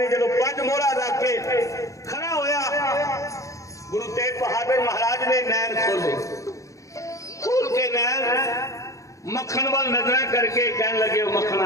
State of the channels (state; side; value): late; right; 0.15 ms